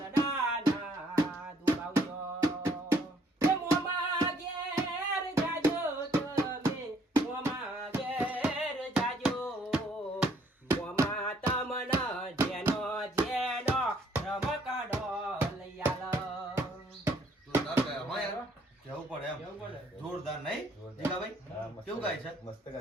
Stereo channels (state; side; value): normal; both; correlation 0.65